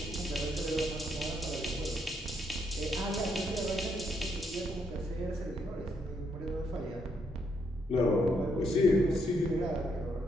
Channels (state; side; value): normal; both; correlation 0.75